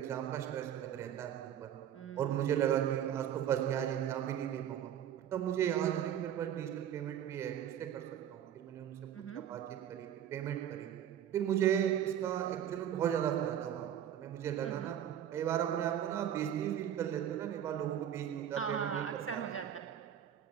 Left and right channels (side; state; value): left; quieter; 10.1 dB